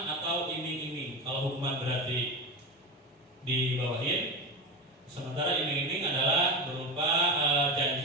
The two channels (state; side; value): normal; both; correlation 0.20